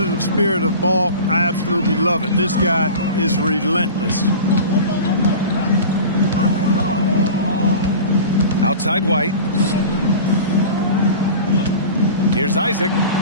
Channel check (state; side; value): inverted; both; correlation -0.35